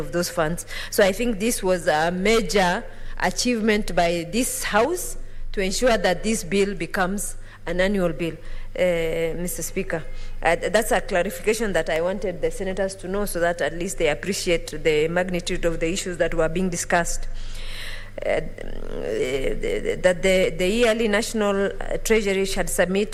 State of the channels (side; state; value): both; identical; correlation 1.00